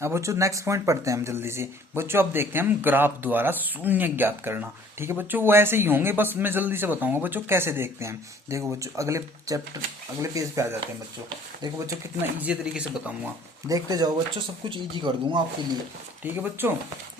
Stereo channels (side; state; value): both; normal; correlation 0.54